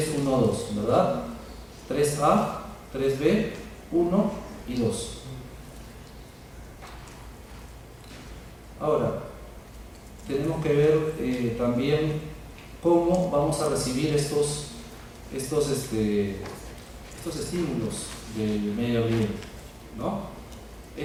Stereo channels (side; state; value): both; identical; correlation 1.00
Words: 1, 2, ¿verdad? 3A, 3B, 1 y 2. Ahora, tenemos que ver también cómo vamos a recibir estos estímulos del medio ambiente, ¿no?